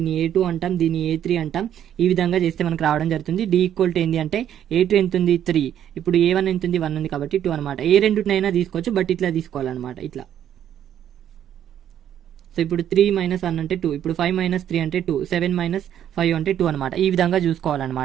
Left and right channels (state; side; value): quieter; left; 10.3 dB